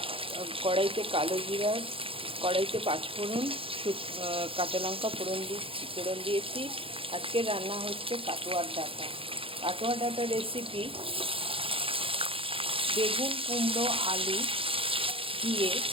কড়াইতে কালো জিরা, কড়াইতে পাঁচফোড়ন, কাঁচা লঙ্কা ফোড়ন দিয়েছি। আজকে রান্না হচ্ছে কাটোয়ার ডাঁটা। কাটোয়ার ডাঁটা রেসিপি বেগুন, কুমড়ো, আলু দিয়ে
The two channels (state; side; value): late; left; 0.27 ms